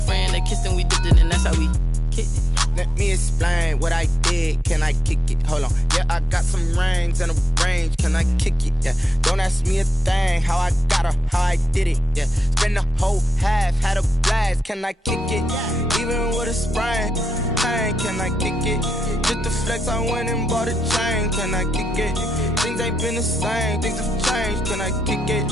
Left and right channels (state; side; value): normal; both; correlation 0.87